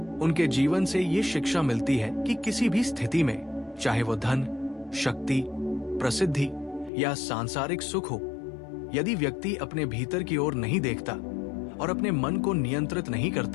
उनके जीवन से ये शिक्षा मिलती है कि किसी भी स्थिति में, चाहे वो धन, शक्ति, प्रसिद्धि या सांसारिक सुख हो, यदि व्यक्ति अपने भीतर की ओर नहीं देखता और अपने मन को नियंत्रित नहीं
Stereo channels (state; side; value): drops out; right; at 6.9 s